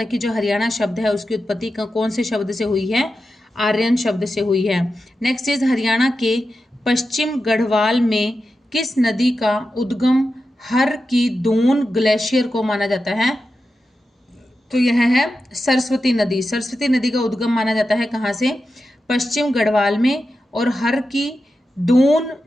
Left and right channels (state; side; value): normal; both; correlation 0.90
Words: कि जो हरियाणा शब्द है उसकी उत्पत्ति कौन से शब्द से हुई है? आर्यन शब्द से हुई है। नेक्स्ट इज हरियाणा के पश्चिम गढ़वाल में किस नदी का उद्गम हर की दून ग्लेशियर को माना जाता है? तो यह है सरस्वती नदी। सरस्वती नदी का उद्गम माना जाता है कहाँ से? पश्चिम गढ़वाल में। और हर की दून